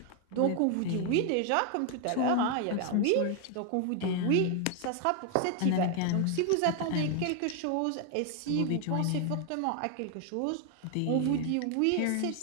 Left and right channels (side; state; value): both; different; correlation 0.00